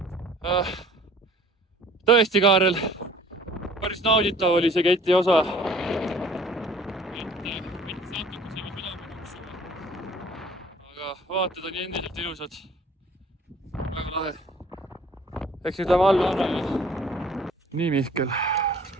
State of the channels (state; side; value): normal; both; correlation 0.52